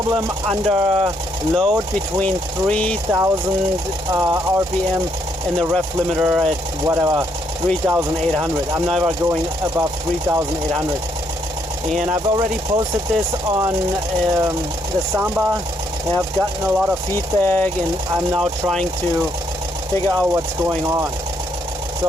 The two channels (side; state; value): both; normal; correlation 0.73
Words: under load between 3000 RPM and the ref limiter at whatever 3,800. I'm never going above 3,800. And I've already posted this on the Samba. I've gotten a lot of feedback and I'm now trying to figure out what's going on.